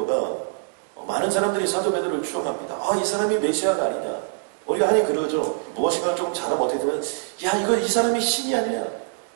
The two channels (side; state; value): left; silent; 55 dB below the other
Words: 많은 사람들이 사도 베드로를 추앙합니다. 아, 이 사람이 메시아가 아니냐. 우리가 흔히 그러죠. 무엇인가 조금 잘하면 어떻게 되면 야, 이 사람이 신이 아니냐.